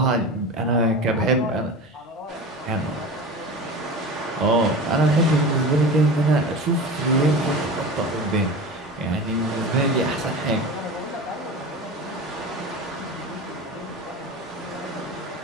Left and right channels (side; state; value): both; normal; correlation 0.32